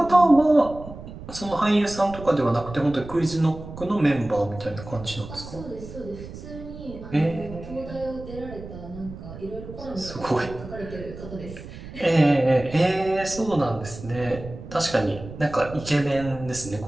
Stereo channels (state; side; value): noise; right; rumble, 13 dB below the sound